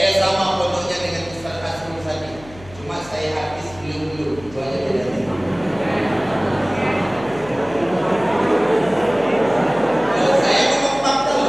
sama pondoknya dengan Ustaz Asrul Sadi. Cuma saya habis belum. Itu aja bedanya. Saya ngomong fakta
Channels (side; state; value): left; noise; hum, 20 dB below the sound